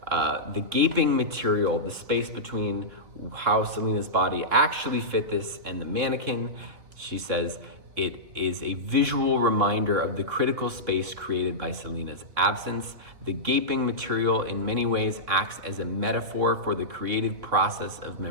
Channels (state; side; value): late; left; 3.6 ms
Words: the gaping material, the space between how Selena's body actually fit this and the mannequin, she says, it is a visual reminder of the critical space created by Selena's absence. The gaping material in many ways acts as a metaphor for the creative process of